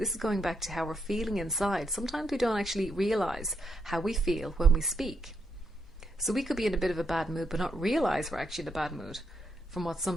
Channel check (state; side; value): normal; both; correlation 0.78